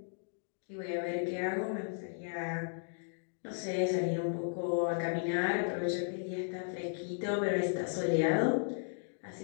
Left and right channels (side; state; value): right; silent; digital silence